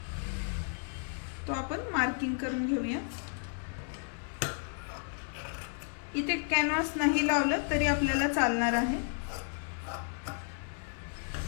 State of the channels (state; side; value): silent; right; 56 dB below the other